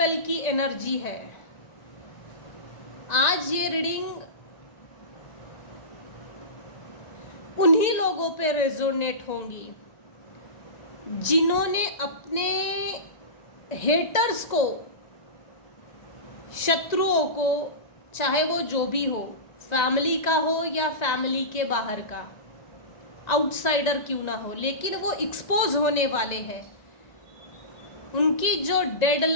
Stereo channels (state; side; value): late; right; 1.9 ms